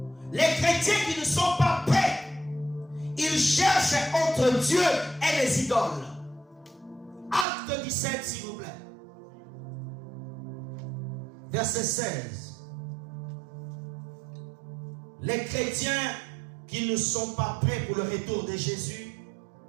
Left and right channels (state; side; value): drops out; left; at 7.5 s